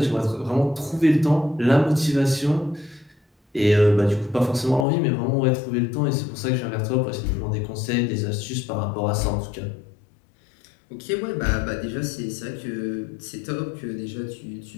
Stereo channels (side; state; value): right; drops out; at 4.9 s